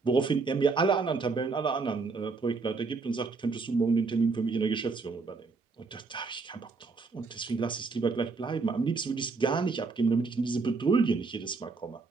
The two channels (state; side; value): quieter; left; 4.3 dB